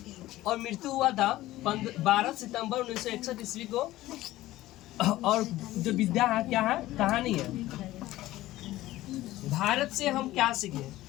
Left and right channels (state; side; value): quieter; right; 16.2 dB